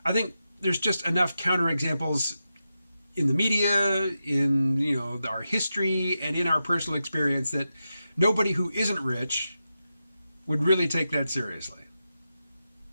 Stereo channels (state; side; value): inverted; both; correlation -0.89